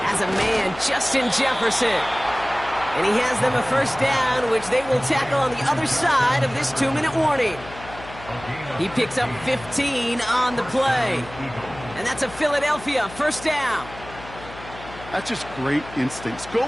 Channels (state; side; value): noise; left; hum, 16 dB below the sound